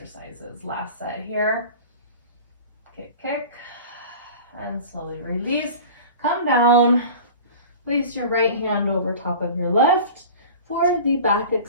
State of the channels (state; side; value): inverted; both; correlation -0.38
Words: Last set here. Kick, kick, And slowly release. Come down. Place your right hand over top of your left for the back